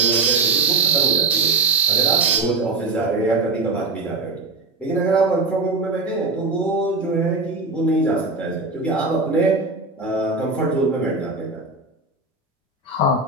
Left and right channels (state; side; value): quieter; left; 3.6 dB